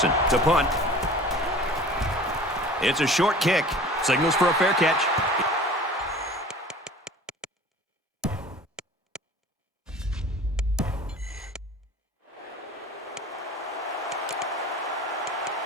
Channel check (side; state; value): both; normal; correlation 0.43